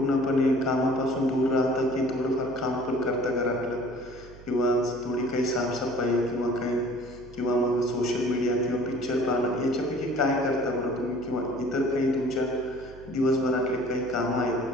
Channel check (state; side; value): noise; right; hum, 19 dB below the sound